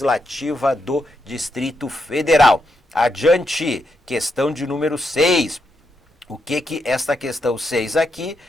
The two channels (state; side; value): normal; both; correlation 0.82